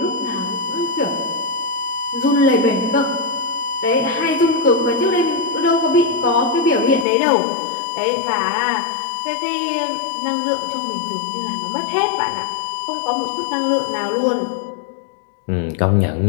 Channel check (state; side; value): drops out; right; at 7.1 s